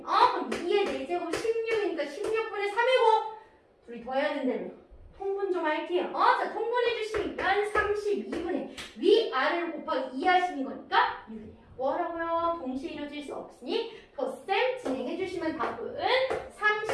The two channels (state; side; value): identical; both; correlation 1.00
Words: 그럼 2의 4제곱 16이니까 16분의 3이고 둘이 더해야 된다며. 통분 좀 할게요. 자, 통분해 주시면 32분의 위아래를 곱하기 2 하시는 거니까 6이에요. 뭐라고요? 동시에 이루어질 수 없으니 덧셈 진행해 주시면 답은